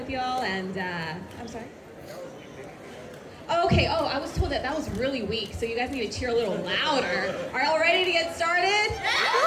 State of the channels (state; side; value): identical; both; correlation 1.00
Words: y'all and, I'm sorry? Okay, I was told that was really weak, so you guys need to cheer a little louder. Are y'all ready to get started?